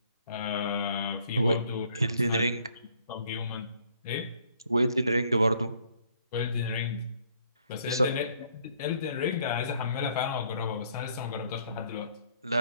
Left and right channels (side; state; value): both; inverted; correlation -0.64